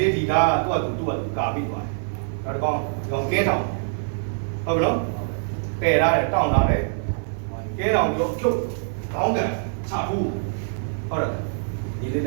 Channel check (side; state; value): left; silent; digital silence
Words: လေးဒီကားကသူ့ကကာပြီးသွားတယ်နောက်တစ်ကောင်ကဲတောင်ဟုတ်ပြီနော်ကဲရတယ်တောင်းလာတယ်ကဲတောင်ပြောဖြုတ်ခေါင်းကန်ချဘူးဟုတ်တယ်ဒီလေးလ